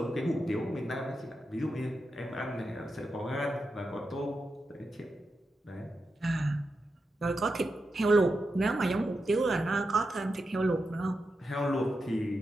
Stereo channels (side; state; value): both; normal; correlation 0.88